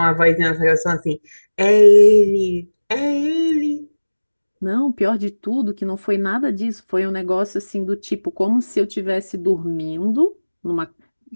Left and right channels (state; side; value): inverted; both; correlation -1.00